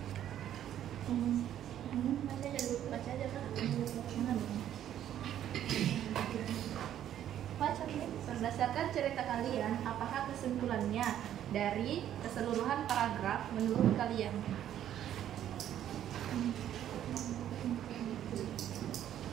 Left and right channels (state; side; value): quieter; left; 11.0 dB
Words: baca aja kan? Baca nih. Berdasarkan cerita kalian, apakah kesimpulannya dari keseluruhan paragraf menurut kalian?